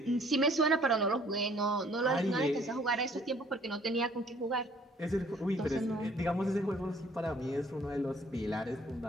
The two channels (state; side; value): normal; both; correlation 0.58